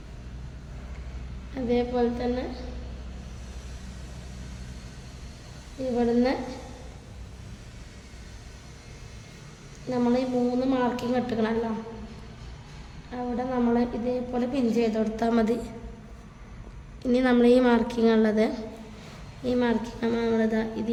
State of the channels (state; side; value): identical; both; correlation 1.00